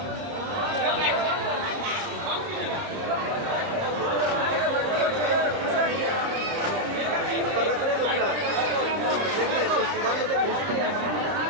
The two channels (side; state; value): left; late; 30 ms